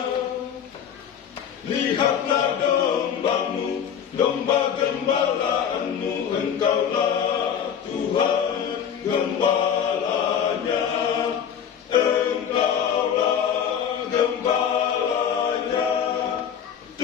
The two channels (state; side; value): quieter; right; 8.3 dB